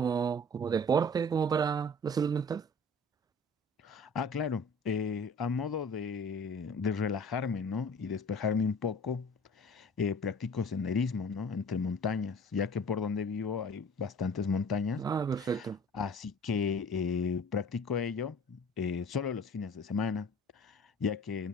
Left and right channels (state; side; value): normal; both; correlation 0.46